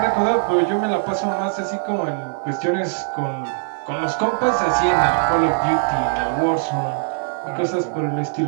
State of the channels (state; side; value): silent; left; digital silence